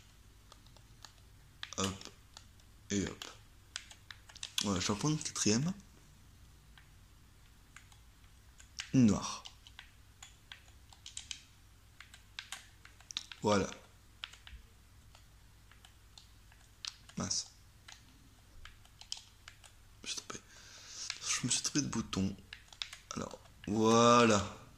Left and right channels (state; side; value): identical; both; correlation 1.00